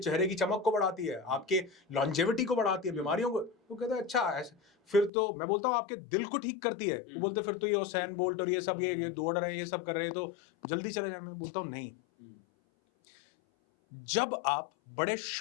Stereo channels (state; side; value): drops out; right; at 5.1 s